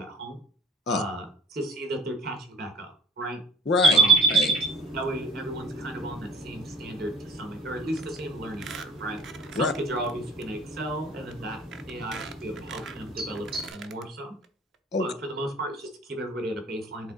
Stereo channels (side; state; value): both; normal; correlation 0.47